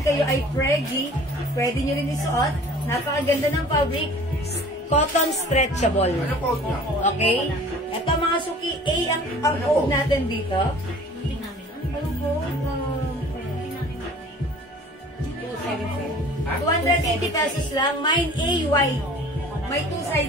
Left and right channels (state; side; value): normal; both; correlation 0.47